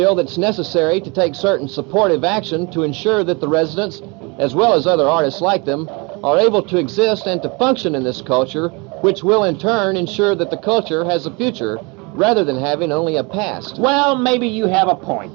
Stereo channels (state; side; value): quieter; left; 28.9 dB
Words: that it's necessary to take certain supportive action to ensure that the residents, as well as other artists like them, are able to exist and to function in this culture, which will in turn ensure that the culture has a future rather than having only a past. Well, maybe you have a